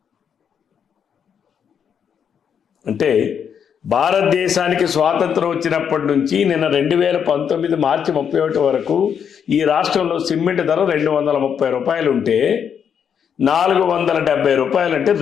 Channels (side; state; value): right; quieter; 7.7 dB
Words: అంటే భారతదేశానికి స్వాతంత్రం వచ్చినప్పటి నుంచి నిన్న 2019 మార్చి 31 వరకు ఈ రాష్ట్రంలో సిమెంట్ ధర 230 రూపాయలు ఉంటే 470 రూపాయలు అంటే